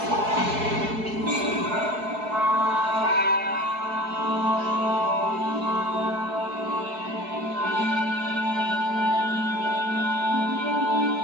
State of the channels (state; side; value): late; left; 4.7 ms